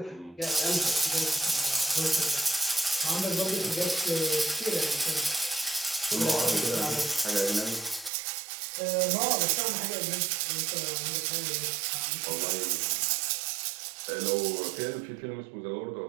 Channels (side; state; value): left; drops out; at 8.1 s